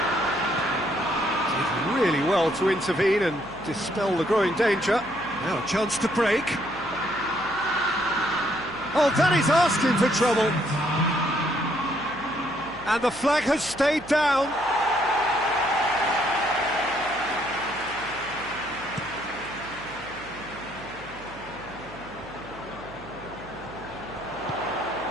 Did really well to intervene and dispel the growing danger. Now a chance to break. Oh, that is asking for trouble. And the flag has stayed down.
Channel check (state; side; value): noise; right; hum, 20 dB below the sound